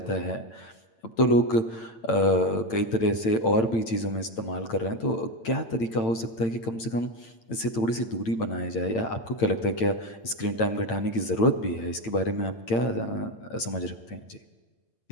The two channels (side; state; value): right; late; 8.9 ms